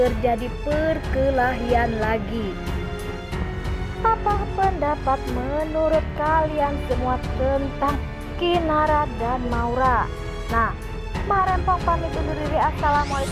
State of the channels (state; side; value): identical; both; correlation 1.00